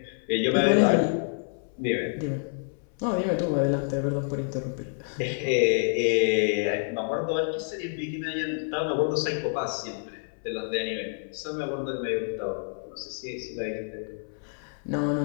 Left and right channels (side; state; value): right; silent; 59 dB below the other